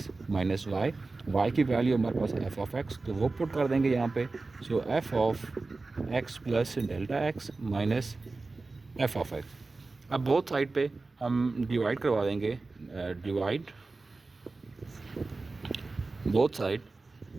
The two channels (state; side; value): quieter; left; 3.6 dB